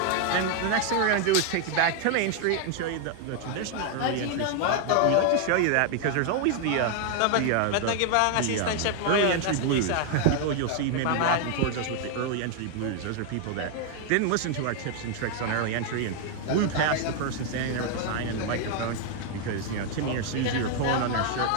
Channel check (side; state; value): both; different; correlation 0.00